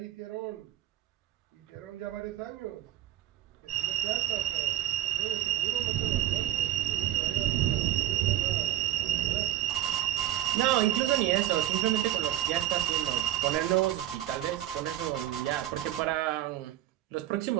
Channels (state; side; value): quieter; left; 13.0 dB